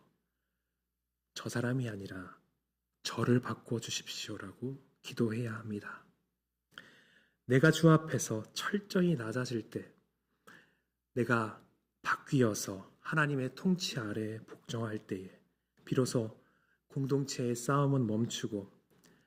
저 사람이 아니라 저를 바꾸어 주십시오라고 기도해야 합니다. 내가 주 앞에서 철저히 낮아질 때 내가 바뀌어서 하나님의 통치 아래 복종할 때에 비로소 공동체의 싸움은 멈추고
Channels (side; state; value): both; identical; correlation 1.00